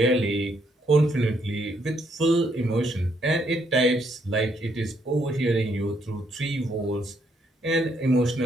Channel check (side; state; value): both; normal; correlation 0.73